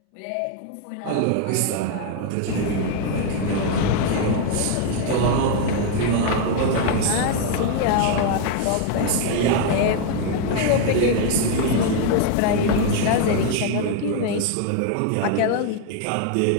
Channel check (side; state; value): both; different; correlation 0.01